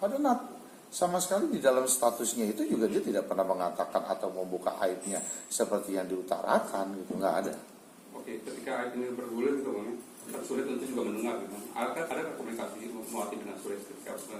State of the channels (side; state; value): both; identical; correlation 1.00